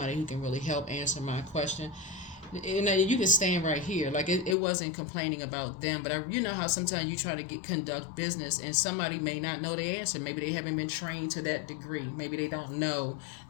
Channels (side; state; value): right; drops out; at 4.5 s